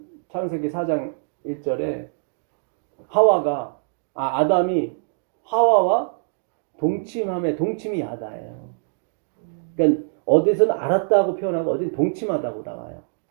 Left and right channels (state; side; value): silent; left; digital silence